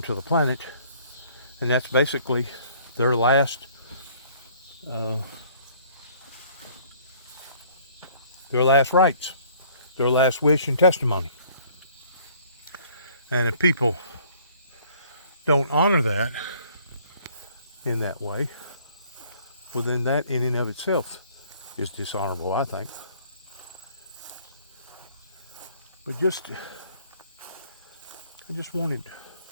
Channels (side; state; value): both; inverted; correlation -0.57